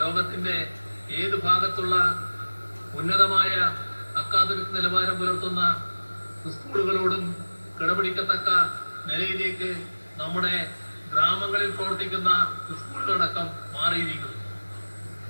ലോകത്തിന്റെ ഏത് ഭാഗത്തുള്ള ഉന്നതമായ അക്കാദമിക് നിലവാരം പുലർത്തുന്ന സ്കൂളുകളോടും കിടപിടിക്കത്തക്ക നിലയിലേക്ക് നമ്മുടെ ഗ്രാമങ്ങളിൽ പ്രവർത്തിക്കുന്ന സ്കൂളുകളടക്കം മാറിയിരിക്കുന്നു.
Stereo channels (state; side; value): inverted; both; correlation -1.00